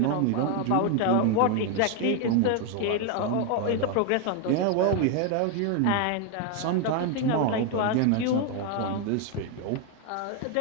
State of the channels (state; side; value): different; both; correlation 0.01